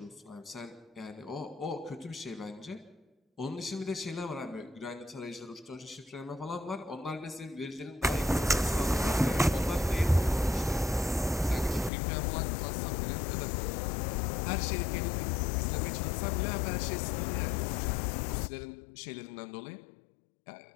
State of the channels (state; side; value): drops out; right; at 11.9 s